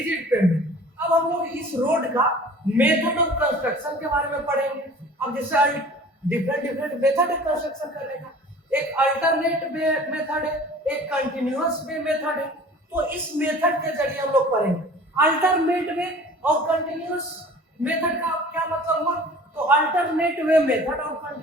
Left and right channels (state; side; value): normal; both; correlation 0.45